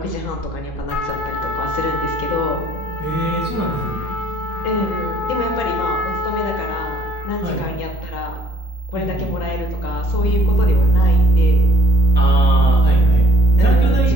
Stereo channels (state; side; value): normal; both; correlation 0.60